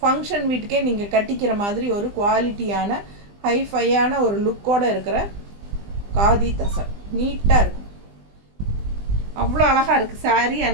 வீட்டுக்கே நீங்கள் கட்டிக்கிற மாதிரி ஒரு குவாலிட்டியான ஹைஃபையான ஒரு லுக்கோடு இருக்கிற காதி தசர். நீட்டாக இருக்கும், அவ்வளோ அழகாக இருக்குது சாரீ.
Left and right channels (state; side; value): late; left; 20 ms